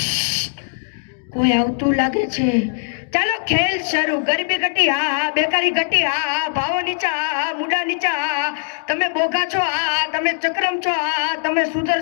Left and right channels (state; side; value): silent; right; digital silence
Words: કોઈ આવતું લાગે છે ચાલો ખેલ શરૂ ગરીબી ઘટી હા બેકારી ઘટી હા ભાવો નીચા હા મુડા નીચા હા તમે બોગા છો હા તમે ચક્રમ છો હા તમે